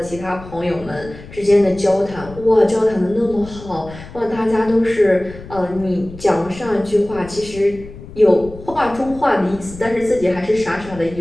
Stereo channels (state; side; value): noise; left; rumble, 16 dB below the sound